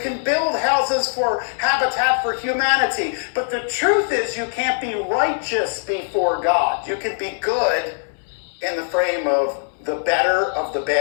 can build houses for Habitat for Humanity. But the truth is, you can't be righteous before God. You can be good in the frame of the better of the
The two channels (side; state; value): right; silent; digital silence